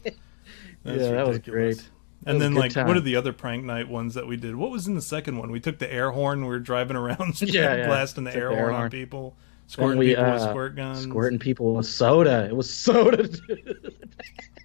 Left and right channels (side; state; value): right; silent; digital silence